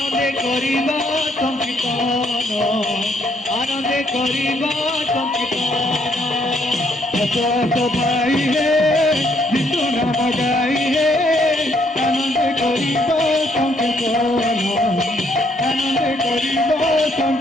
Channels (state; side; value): normal; both; correlation 0.70